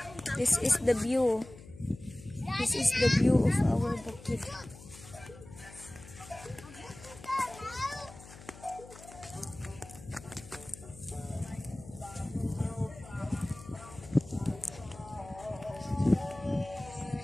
This is the view. This is the view of our bukid.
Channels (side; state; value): left; noise; hum, 18 dB below the sound